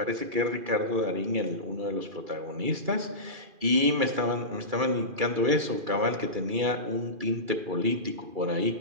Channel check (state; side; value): late; left; 2.4 ms